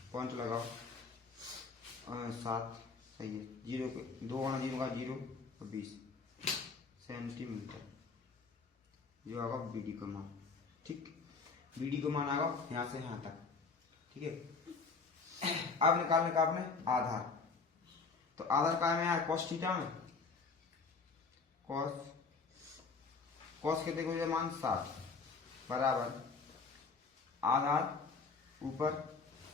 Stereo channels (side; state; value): right; quieter; 4.6 dB